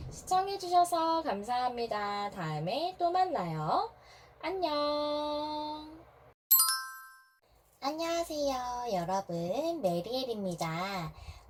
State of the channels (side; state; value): both; identical; correlation 1.00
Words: 시청해주셔서 감사합니다. 다음에 또 만나요. 안녕. 안녕하세요, 여러분. 메리엘입니다.